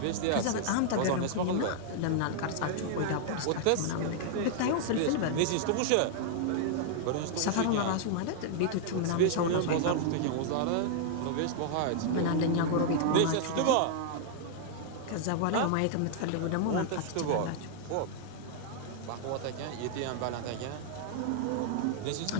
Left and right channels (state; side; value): different; both; correlation -0.01